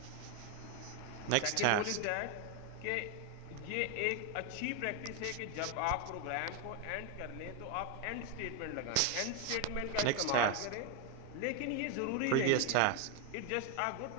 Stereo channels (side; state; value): both; different; correlation 0.01